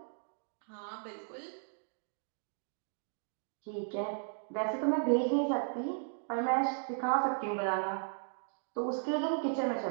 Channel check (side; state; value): left; silent; digital silence